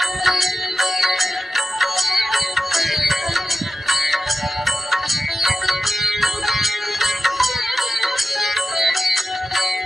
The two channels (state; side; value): normal; both; correlation 0.93